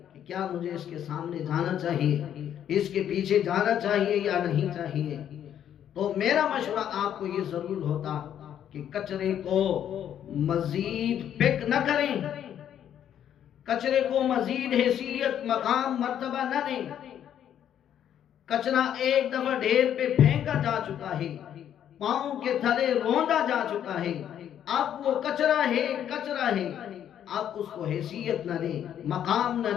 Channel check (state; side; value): quieter; right; 10.0 dB